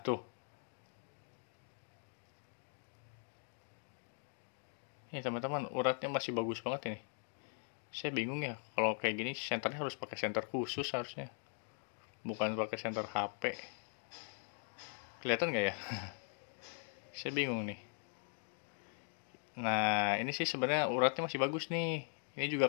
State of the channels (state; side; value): silent; right; 51 dB below the other